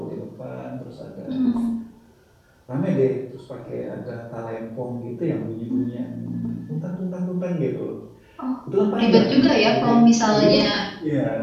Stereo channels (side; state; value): both; identical; correlation 1.00